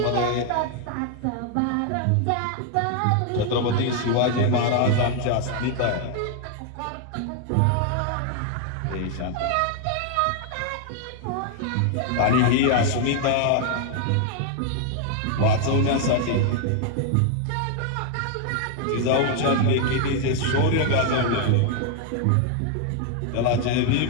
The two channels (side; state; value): both; different; correlation 0.00